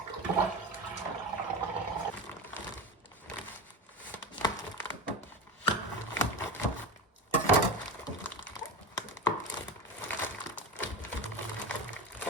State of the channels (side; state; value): both; normal; correlation 0.25